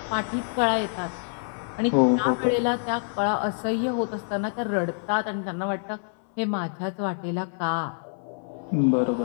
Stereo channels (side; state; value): right; silent; 58 dB below the other